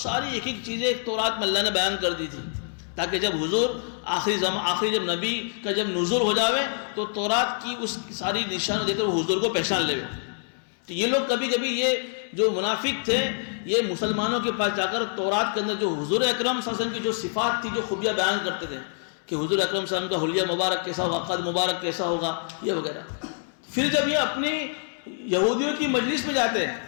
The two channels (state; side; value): silent; right; 61 dB below the other